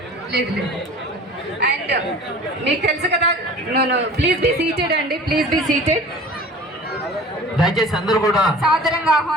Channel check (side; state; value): both; normal; correlation 0.42